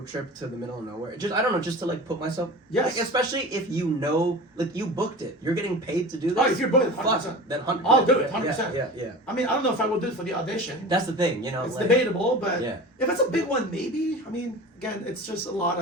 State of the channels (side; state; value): both; normal; correlation 0.35